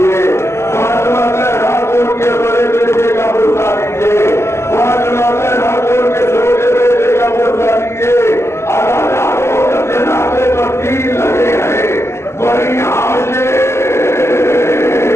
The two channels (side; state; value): right; late; 0.13 ms